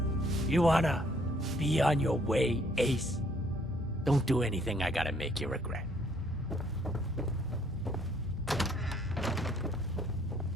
You wanna be on your way, Ace? Don't do anything I gotta make you regret.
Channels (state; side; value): normal; both; correlation 0.64